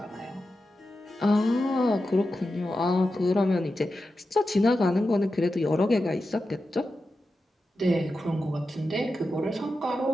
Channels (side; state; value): both; normal; correlation 0.91